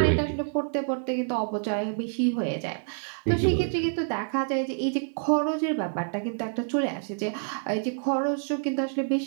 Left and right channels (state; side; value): silent; left; digital silence